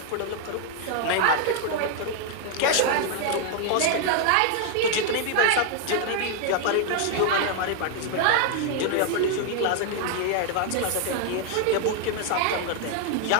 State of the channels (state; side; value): different; both; correlation 0.00